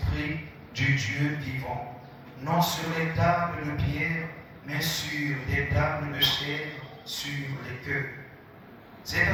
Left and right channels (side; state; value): both; identical; correlation 1.00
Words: du Dieu vivant, non sur les tables de pierre, mais sur des tables de chair, sur les cœurs. Cette